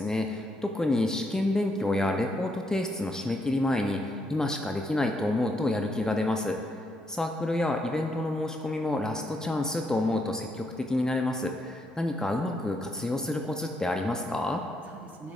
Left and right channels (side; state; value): both; normal; correlation 0.77